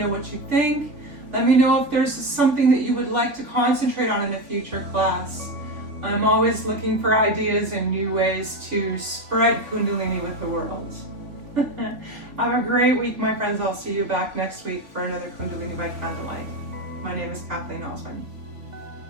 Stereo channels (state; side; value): late; left; 3.6 ms